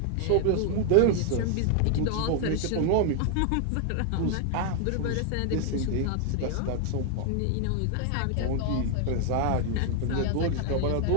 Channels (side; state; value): both; different; correlation 0.00